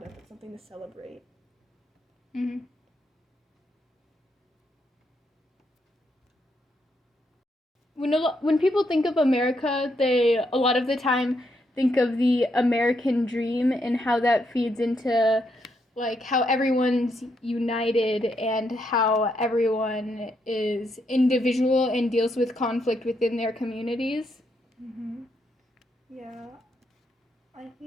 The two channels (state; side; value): normal; both; correlation 0.78